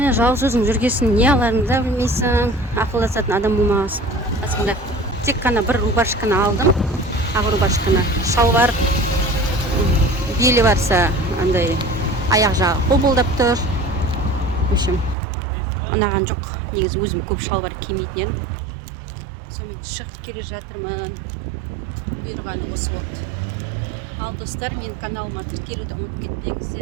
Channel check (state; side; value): drops out; left; at 15.2 s